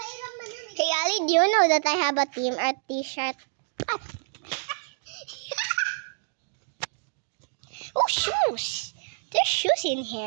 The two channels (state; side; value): silent; left; digital silence